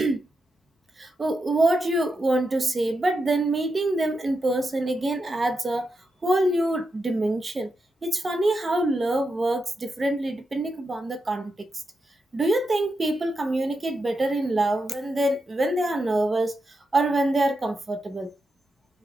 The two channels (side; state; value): both; normal; correlation 0.87